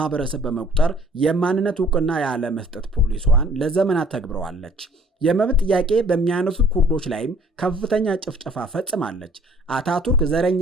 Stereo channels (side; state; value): both; normal; correlation 0.57